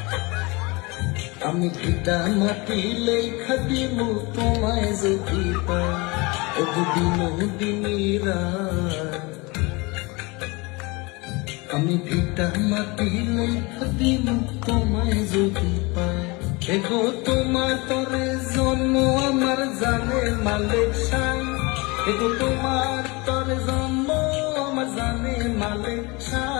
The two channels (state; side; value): quieter; right; 26.1 dB